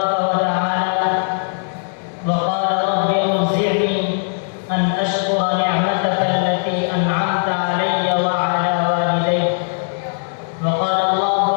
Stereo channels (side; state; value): right; silent; 59 dB below the other